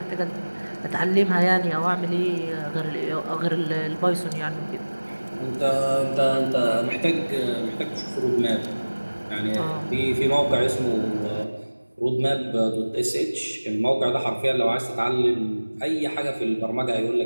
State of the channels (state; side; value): inverted; both; correlation -1.00